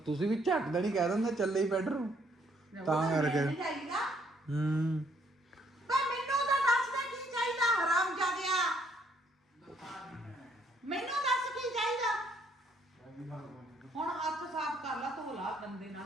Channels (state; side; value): normal; both; correlation 0.68